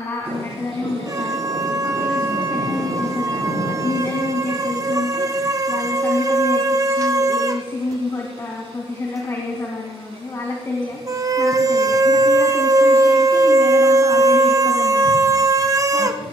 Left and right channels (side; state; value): both; normal; correlation 0.66